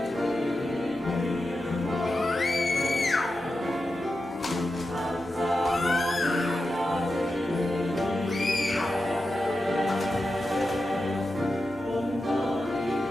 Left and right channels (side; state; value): both; normal; correlation 0.90